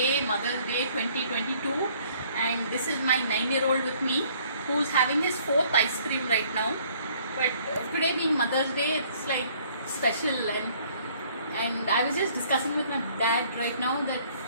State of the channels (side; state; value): both; inverted; correlation -0.60